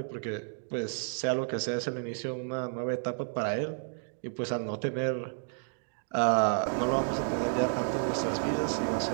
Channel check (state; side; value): silent; left; digital silence